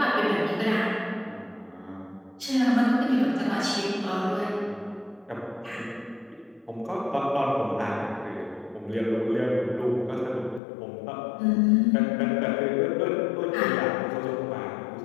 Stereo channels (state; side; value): drops out; right; at 10.6 s